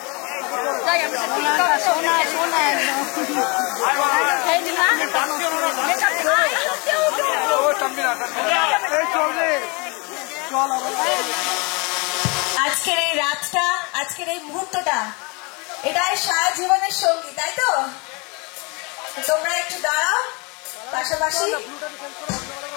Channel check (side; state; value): right; quieter; 30.0 dB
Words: আজকের এই রাতটা, আজকের এই মুহূর্তটা, এটাই সারা জীবনের সঙ্গী, তাই তো? তোমরা একটু দাঁড়াও পাশাপাশি।